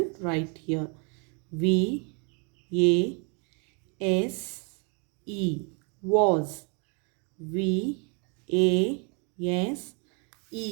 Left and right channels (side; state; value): left; quieter; 35.6 dB